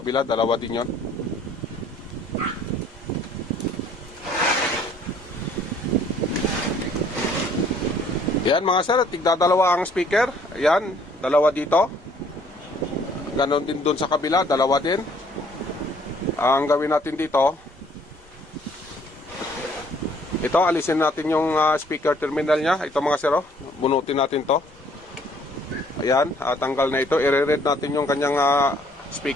dalawa din yon. Yan mga sir, tigdadalawa ang speaker. Yan, dalawa dito. Ganon din doon sa kabila, dalawa din. Ang gawin natin dito, ito, alisin natin yung speaker terminal nya. Ito mga sir, bunutin natin to. Ayan, tanggal na ito. I-read natin yung kanyang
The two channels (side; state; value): both; normal; correlation 0.60